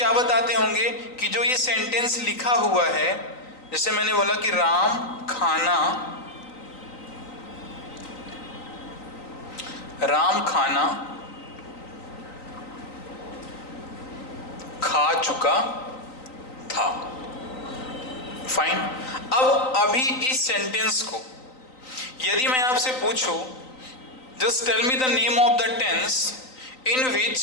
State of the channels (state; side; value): late; right; 3.9 ms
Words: बताते होंगे कि जो ये सेंटेंस लिखा हुआ है, जैसे मैंने बोला कि राम खाना खा चुका था। फाइन, अब अभी इस सेंटेंस को यदि मैं आपसे पूछूं, just tell me the name of the tense in which